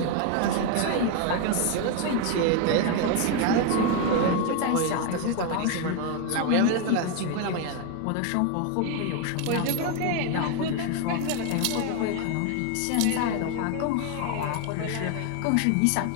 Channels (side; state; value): both; different; correlation 0.01